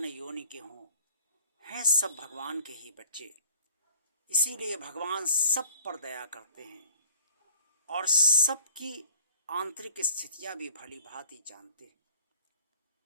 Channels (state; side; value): inverted; both; correlation -0.49